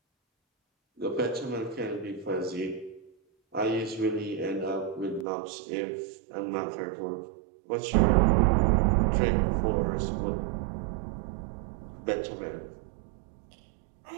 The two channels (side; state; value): left; drops out; at 5.2 s